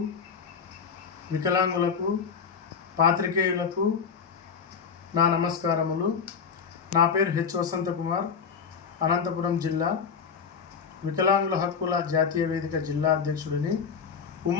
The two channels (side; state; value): right; quieter; 6.2 dB